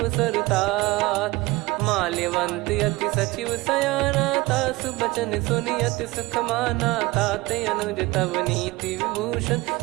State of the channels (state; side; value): quieter; left; 21.4 dB